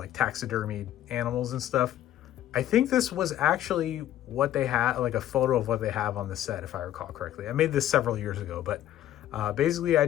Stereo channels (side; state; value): right; quieter; 12.5 dB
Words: taxidermied animals and stuff. I think this was actually what they had, like a photo of what they have on the set, if I recall correctly. I made this several years ago, but basically I